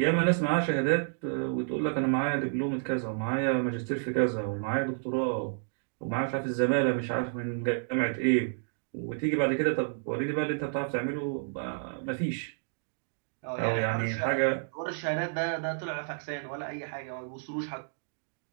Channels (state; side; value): silent; left; digital silence